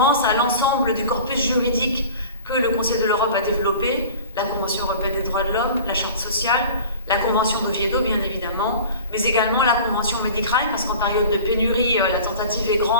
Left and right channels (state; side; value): inverted; both; correlation -0.41